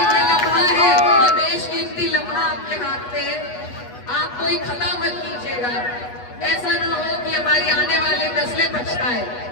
ये लम्हा है, ये बेशकीमती लम्हा आपके हाथ में है, आप कोई खता मत कीजिएगा। ऐसा ना हो कि हमारी आने वाली नस्लें पछताए।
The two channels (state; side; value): late; right; 8.2 ms